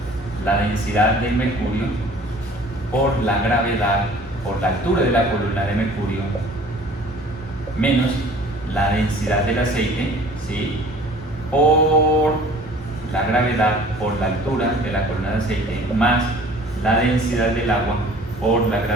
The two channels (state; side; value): normal; both; correlation 0.49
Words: la densidad del mercurio por la gravedad por la altura de la columna de mercurio menos la densidad del aceite, ¿sí?, por la gravedad por la altura de la columna de aceite más la densidad del agua por la